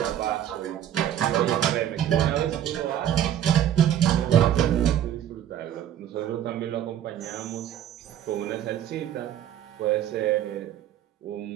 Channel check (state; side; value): quieter; left; 10.8 dB